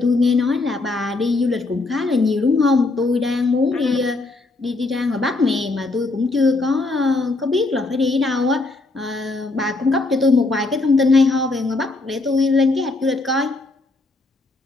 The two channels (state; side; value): quieter; right; 3.3 dB